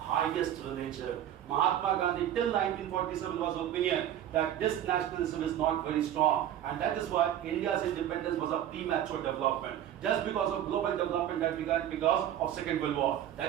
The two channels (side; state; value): left; quieter; 11.2 dB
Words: religion. Mahatma Gandhi till 1947 was of opinion that this nationalism is not very strong, and that is why India's independence was a premature development. Just because of global development that began because of Second World War.